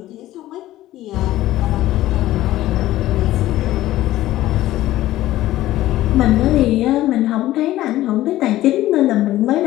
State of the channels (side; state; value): right; quieter; 15.1 dB